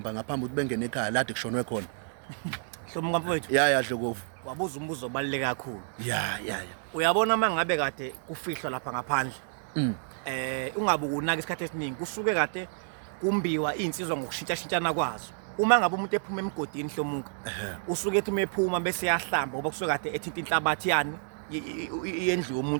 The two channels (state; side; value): silent; left; digital silence